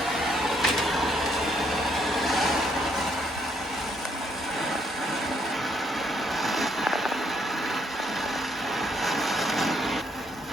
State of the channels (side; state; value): both; normal; correlation 0.71